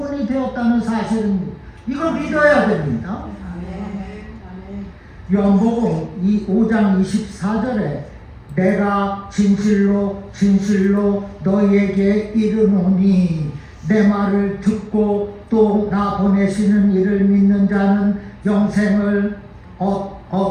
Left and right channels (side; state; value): both; identical; correlation 1.00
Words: 되었다는 사실입니다. 이걸 믿어야 됩니다. 요한복음 5장 24절에 내가 진실로 진실로 너희에게 이르노니 내 말을 듣고 또 나 보내시는 이를 믿는 자는 영생을